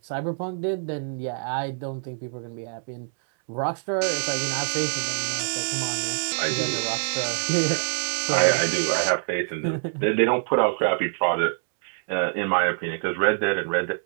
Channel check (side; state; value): left; silent; 62 dB below the other